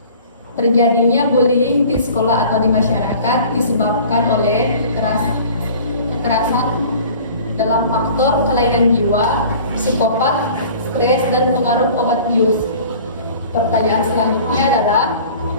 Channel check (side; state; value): both; inverted; correlation -0.45